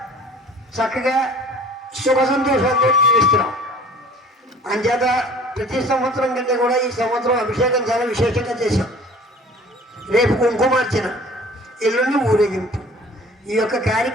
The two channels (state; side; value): normal; both; correlation 0.48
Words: చక్కగా సుఖ సంతోషాలతో జీవిస్తున్నాం. అంచేత ప్రతి సంవత్సరం కంటే కూడా ఈ సంవత్సరం అభిషేకం చాలా విశేషంగా చేశాం. రేపు కుంకుమార్చన, ఎల్లుండి ఊరేగింపు. ఈ యొక్క